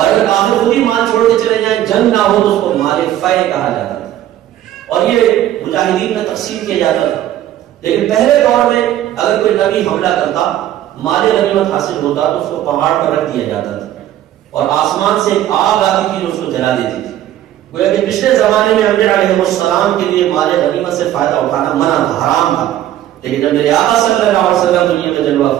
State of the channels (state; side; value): quieter; left; 12.6 dB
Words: اگر کافر خود ہی مال چھوڑ کے چلے جائیں، جنگ نہ ہو تو اس کو مال فے کہا جاتا تھا، اور یہ مجاہدین میں تقسیم کیا جاتا تھا۔ لیکن پہلے دور میں اگر کوئی نبی حملہ کرتا، مال غنیمت حاصل ہوتا تو اس کو پہاڑ پر رکھ دیا جاتا تھا، اور آسمان سے ایک آگ آتی تھی جو اس کو جلا دیتی تھی۔ گویا کہ پچھلے زمانے میں انبیاء علیہ السلام کے لیے مال غنیمت سے فائدہ اٹھانا منع تھا، حرام تھا، لیکن جب میرے آقا صلی اللہ علیہ وسلم دنیا میں جلوہ